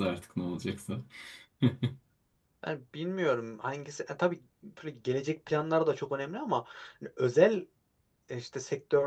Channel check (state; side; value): identical; both; correlation 1.00